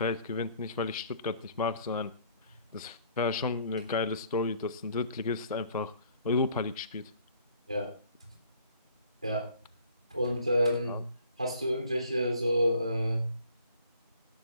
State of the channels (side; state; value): both; inverted; correlation -0.57